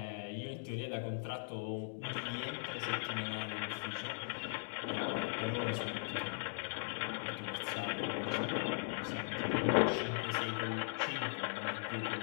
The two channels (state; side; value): silent; right; digital silence